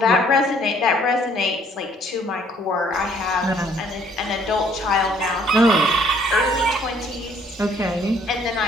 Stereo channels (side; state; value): both; normal; correlation 0.62